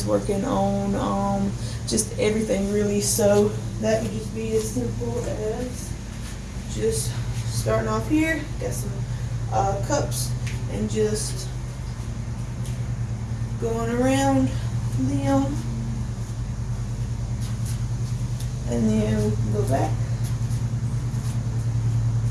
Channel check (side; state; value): both; identical; correlation 1.00